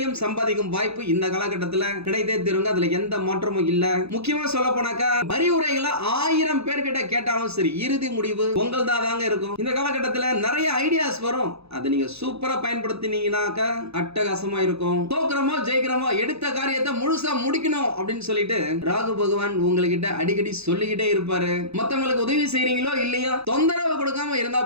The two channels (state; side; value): late; left; 0.79 ms